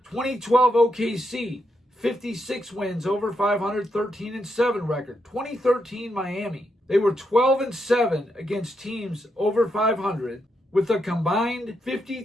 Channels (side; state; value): both; normal; correlation 0.81